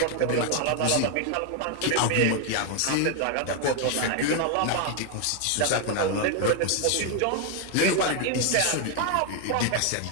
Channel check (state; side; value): different; both; correlation 0.01